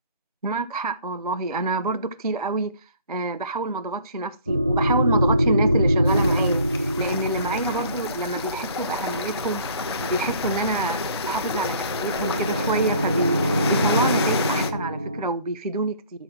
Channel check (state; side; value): inverted; both; correlation -0.53